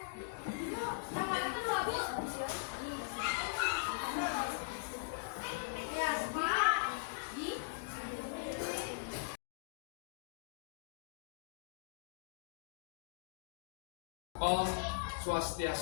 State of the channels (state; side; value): quieter; right; 32.3 dB